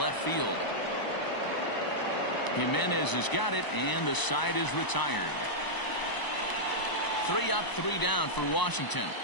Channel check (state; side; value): late; right; 1.0 ms